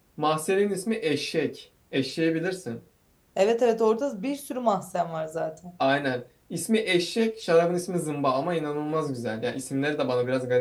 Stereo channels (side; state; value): both; identical; correlation 1.00